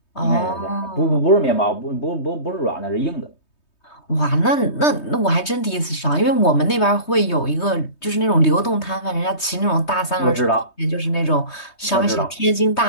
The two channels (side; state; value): right; late; 3.2 ms